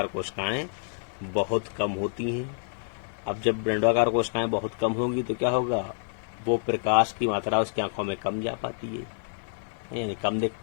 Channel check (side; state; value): right; silent; digital silence